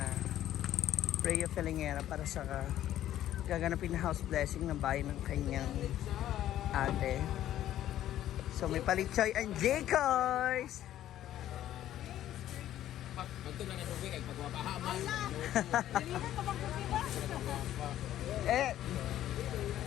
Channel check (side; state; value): right; quieter; 12.5 dB